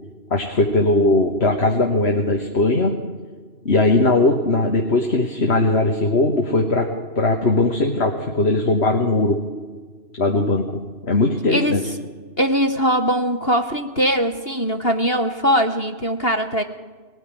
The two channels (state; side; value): late; right; 2.8 ms